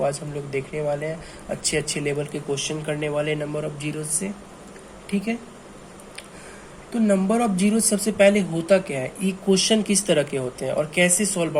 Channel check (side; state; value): both; identical; correlation 1.00